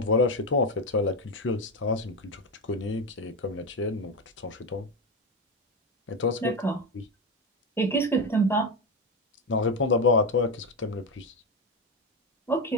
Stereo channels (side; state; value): both; normal; correlation 0.14